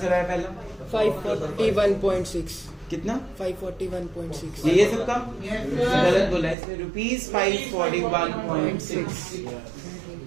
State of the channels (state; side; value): drops out; left; at 6.6 s